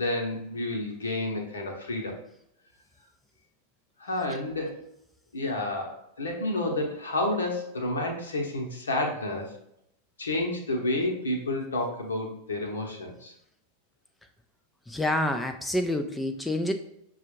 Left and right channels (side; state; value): both; normal; correlation -0.15